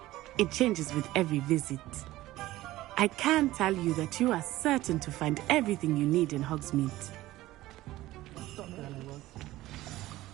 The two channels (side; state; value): left; quieter; 16.5 dB